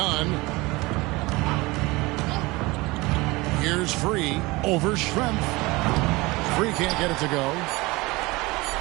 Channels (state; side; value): quieter; left; 22.5 dB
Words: Here's Free over Schrempf. Free can't get it to go.